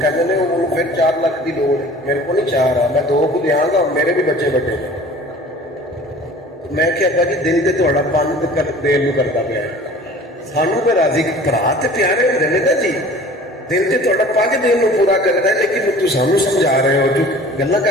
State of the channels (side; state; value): both; normal; correlation 0.45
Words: کہتے ہیں وہ پھر 4 لاکھ کی لوڑ ہے، میرے کو نہیں چاہ رہا، میں 2 کو دیا گا، میرے بھی بچے بڑے ہیں. میں کہ ابا جی دل سے تھوڑا پن دین نو کرتا پیا ہے، سانو پہ راضی برا تو پیارے ہوتے ہیں نا جی، دل سے تھوڑا پن دین نو پورا کرنا ہے، لیکن تو سانو سمجھا رہے ہو، جو گلا